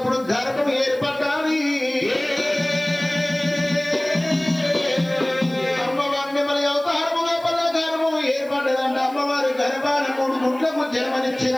గర్భం ఏర్పడ్డాది అమ్మవారి నెమలి అవతారము లోపల గర్భం ఏర్పడ్డదంట అమ్మవారి గర్భాన 3 గుడ్లకు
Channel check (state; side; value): noise; right; hiss, 25 dB below the sound